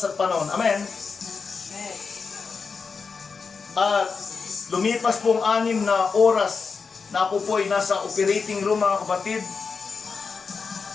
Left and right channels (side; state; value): right; quieter; 5.1 dB